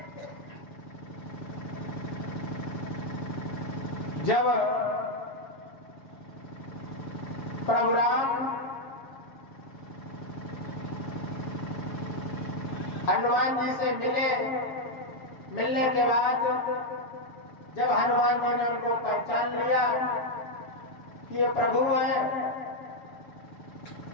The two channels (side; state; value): right; late; 7.2 ms